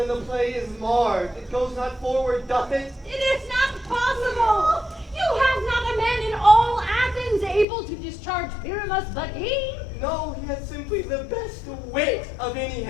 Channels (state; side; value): drops out; right; at 7.7 s